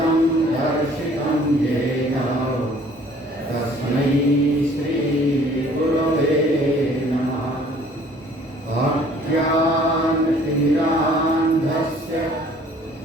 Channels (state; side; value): normal; both; correlation 0.55